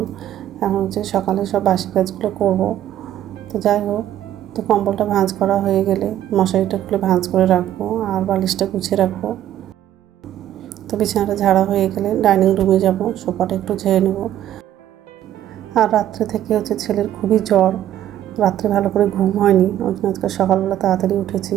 এখন হচ্ছে সকালে সব বাসি কাজগুলো করব। তো যাই হোক, তো কম্বলটা ভাঁজ করা হয়ে গেলে মশারিটা খুলে ভাঁজ করে রাখবো আর বালিশটা গুছিয়ে রাখবো। তো বিছানাটা ঝাড়া হয়ে গেলে ডাইনিং রুমে যাব, সোফাটা একটু ঝেড়ে নেব। আর রাত্রে থেকে হচ্ছে ছেলের খুবই জ্বর, রাত্রে ভালো করে ঘুম হয়নি, ওই জন্য আজকে সকালবেলা তাড়াতাড়ি উঠেছি।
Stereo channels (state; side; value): quieter; left; 11.9 dB